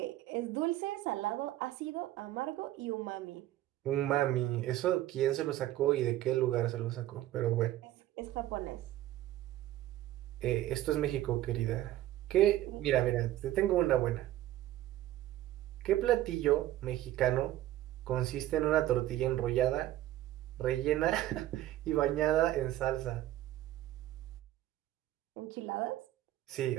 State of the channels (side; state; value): left; quieter; 14.2 dB